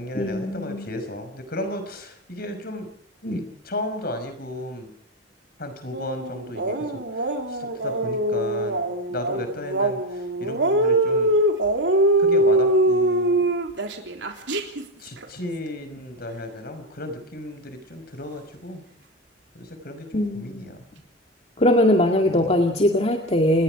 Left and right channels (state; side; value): normal; both; correlation 0.16